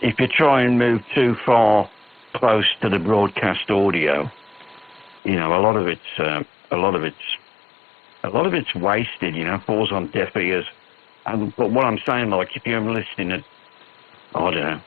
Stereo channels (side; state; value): right; drops out; at 5.2 s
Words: you try and move too far close to the broadcast audio, you know, a lot of it's wasted. You know, falls on deaf ears. But what I'm saying, like, if you're listening at, I don't know,